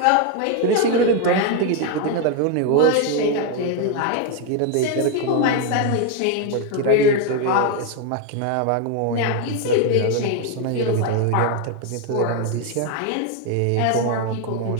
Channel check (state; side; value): different; both; correlation 0.01